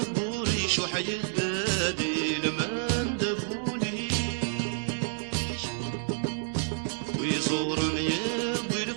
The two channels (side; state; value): left; silent; digital silence